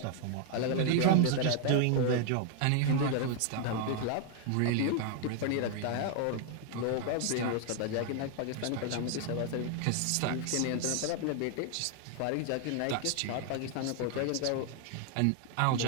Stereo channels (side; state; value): both; different; correlation 0.01